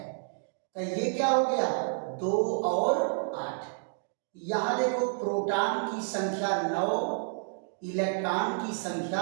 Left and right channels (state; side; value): silent; left; digital silence